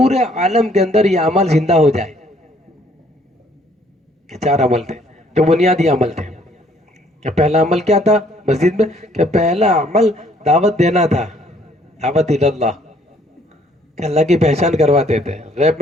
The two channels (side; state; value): both; normal; correlation 0.63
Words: عالم کے اندر یہ عمل زندہ ہو جائے. کہ 4 عمل تھے جو بنیادی عمل تھے. کہ پہلا عمل کیا تھا مسجد میں, کہ پہلا عمل دعوت دینا تھا, دعوت اللہ, کہ اللہ کی پہچان کرواتے تھے. غیب